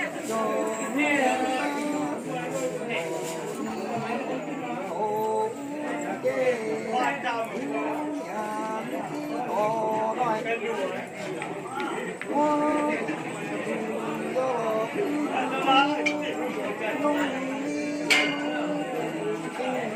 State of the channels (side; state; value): both; identical; correlation 1.00